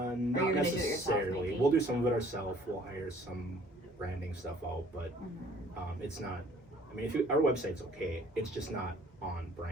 you're gonna do it yourself, necessarily. maybe? We'll do some of it ourselves. We'll hire some branding stuff out, but it's not. I mean, our website's okay. It's just not on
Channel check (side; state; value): both; normal; correlation 0.57